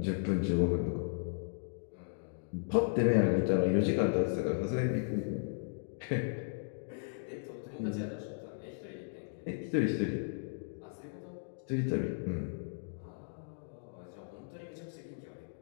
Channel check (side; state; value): right; silent; digital silence